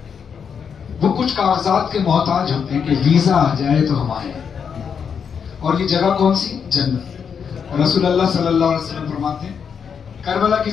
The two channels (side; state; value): right; quieter; 6.9 dB